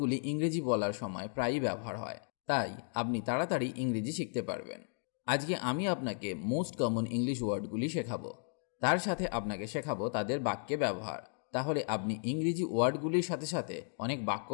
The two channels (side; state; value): right; silent; 55 dB below the other